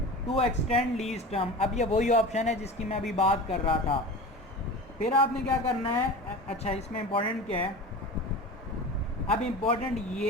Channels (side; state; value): both; normal; correlation 0.33